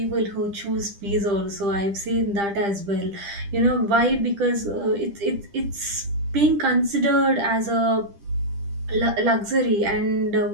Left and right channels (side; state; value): left; late; 10 ms